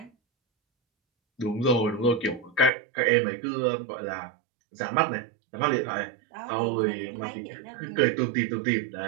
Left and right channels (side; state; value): left; drops out; at 2.7 s